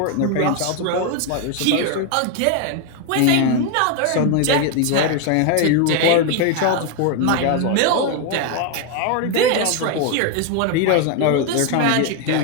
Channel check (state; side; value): different; both; correlation 0.01